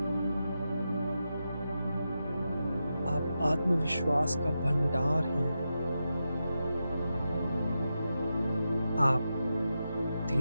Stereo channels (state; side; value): inverted; both; correlation -0.89